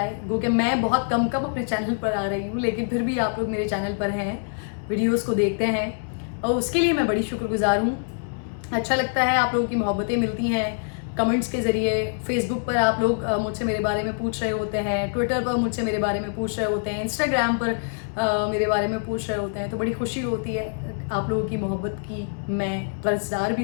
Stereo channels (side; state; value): right; silent; digital silence